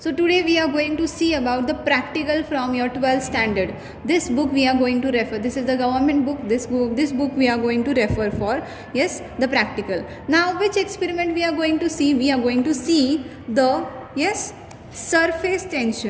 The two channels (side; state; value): both; identical; correlation 1.00